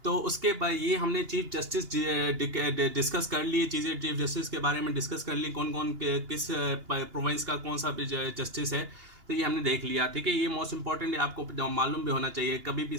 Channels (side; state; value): left; late; 2.8 ms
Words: तो उसके बाद ये हमने चीफ जस्टिस डिस्कस कर लिए चीज़ें, चीफ जस्टिस के बारे में डिस्कस कर ली, कौन कौन किस प्रोविंस का कौन सा जस्टिस है, तो ये हमने देख लिया। ठीक है, ये मोस्ट इंपॉर्टेंट है, आपको मालूम भी होना चाहिए, कभी भी